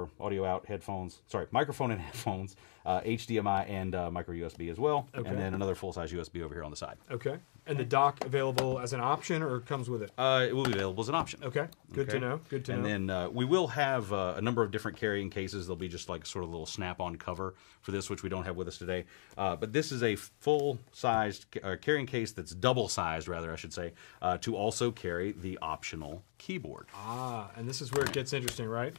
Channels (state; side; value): silent; right; digital silence